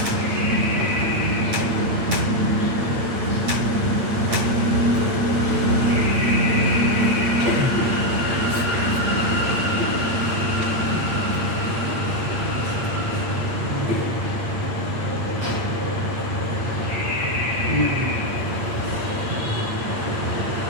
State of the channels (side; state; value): left; late; 8.7 ms